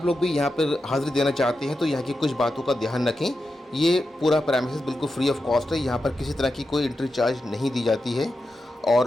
लोग भी यहाँ पर हाज़िरी देना चाहते हैं तो यहाँ की कुछ बातों का ध्यान रखें। ये पूरा प्रेमिसेस बिल्कुल फ्री ऑफ कॉस्ट है, यहाँ पर किसी तरह की कोई एंट्री चार्ज नहीं दी जाती है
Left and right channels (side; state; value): both; normal; correlation 0.89